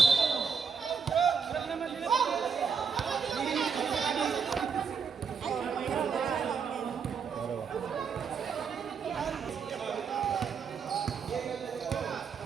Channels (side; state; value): left; quieter; 6.0 dB